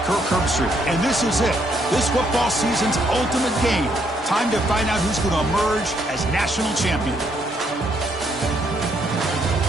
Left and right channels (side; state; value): both; normal; correlation 0.72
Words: Kirk Herbstreit, and this is it, this football season's ultimate game. Time to find out who's going to emerge as national champion.